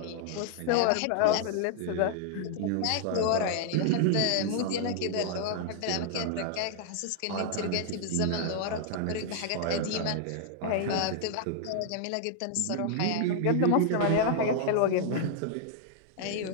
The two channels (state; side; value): different; both; correlation -0.01